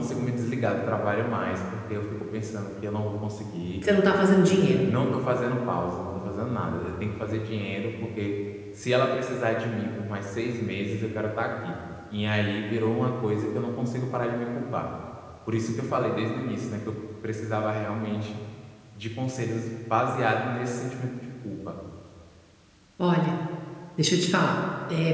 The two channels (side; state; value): both; identical; correlation 1.00